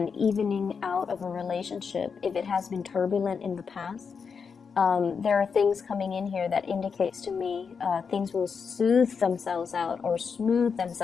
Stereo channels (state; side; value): quieter; right; 5.9 dB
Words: evening out of a relationship if it has been turbulent in the past. There are things coming in here that indicates to me things will soothe themselves out or smooth